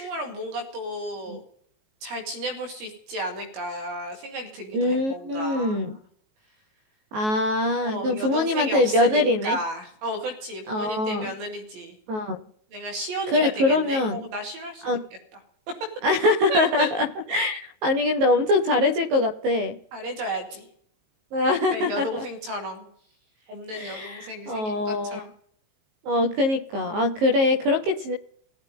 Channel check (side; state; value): left; late; 19 ms